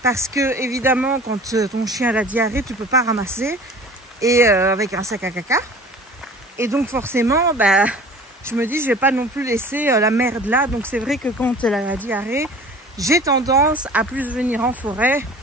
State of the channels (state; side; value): normal; both; correlation 0.44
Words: Parce que, évidemment, quand ton chien a la diarrhée, tu peux pas ramasser. Et avec un sac à caca. Et donc, forcément, bah, je me dis, je vais pas non plus laisser la merde là. Donc, c'est vrai que quand elle a la diarrhée, j'ai tendance à plus venir en forêt